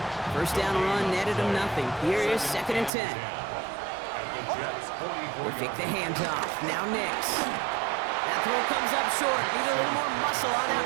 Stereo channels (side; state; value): left; drops out; at 2.9 s